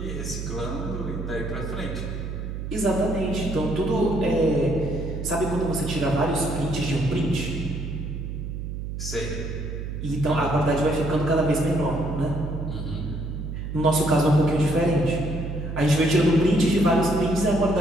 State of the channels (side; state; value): right; noise; hum, 6 dB below the sound